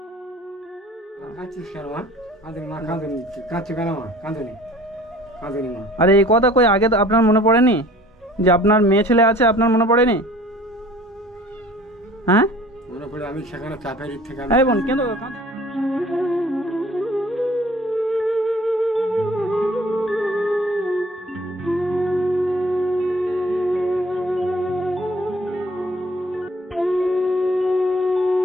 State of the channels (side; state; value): both; normal; correlation 0.50